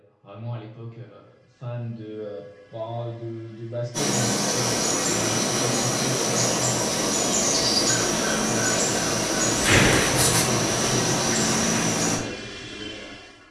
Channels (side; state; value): both; identical; correlation 1.00